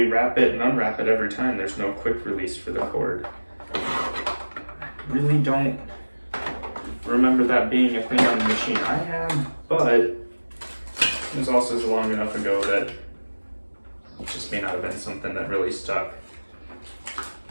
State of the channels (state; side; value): inverted; both; correlation -1.00